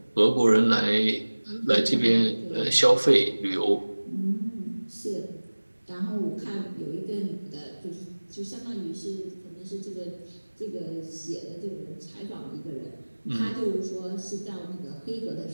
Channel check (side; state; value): both; inverted; correlation -1.00